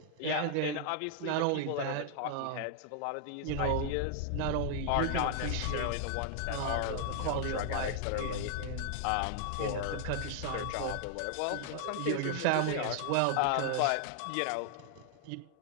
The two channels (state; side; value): different; both; correlation 0.00